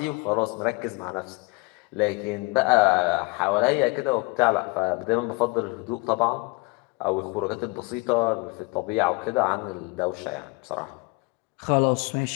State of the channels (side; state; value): right; quieter; 27.7 dB